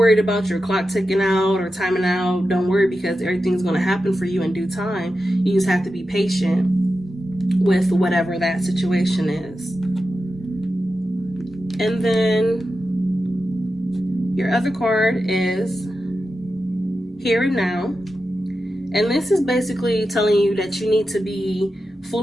about your clock ticking out or timing out, don't worry, because everything's going to happen for you in due time. You just have to be patient with whatever that situation is. And then your other card is Here and Now. And this is basically telling you that you need to be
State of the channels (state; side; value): normal; both; correlation 0.91